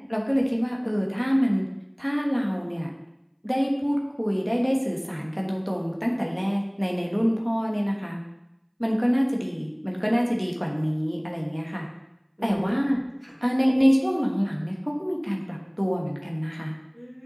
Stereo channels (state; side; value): identical; both; correlation 1.00